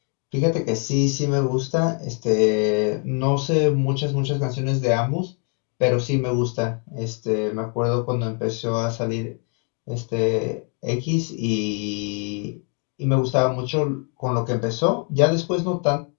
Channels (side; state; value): right; quieter; 39.6 dB